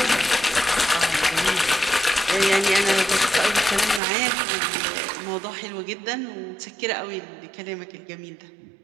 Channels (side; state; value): left; drops out; at 4.0 s